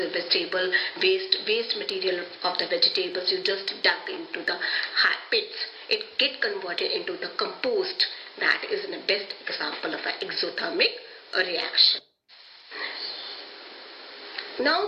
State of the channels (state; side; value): identical; both; correlation 1.00